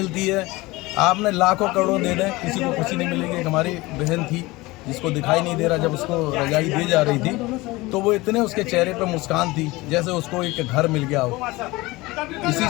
है, आपने लाखों करोड़ों दे दें, किसी को खुशी नहीं मिलेगी। एक हमारी बहन थी जिसको दिखाई नहीं दे रहा, जब उसको रजाई दी जा रही थी तो वो इतने उसके चेहरे पर मुस्कान थी जैसे उसको एक घर मिल गया हो। इसी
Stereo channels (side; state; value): right; quieter; 21.2 dB